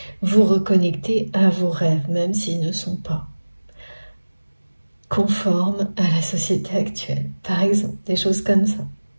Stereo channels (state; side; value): inverted; both; correlation -1.00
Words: Vous reconnecter à vos rêves, même s'ils ne sont pas conformes à la société actuelle. Par exemple, des choses comme ça,